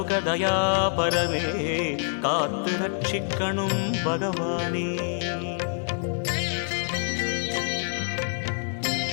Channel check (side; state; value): right; silent; 61 dB below the other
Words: कात्तु रक्षिक्कणुं भगवाने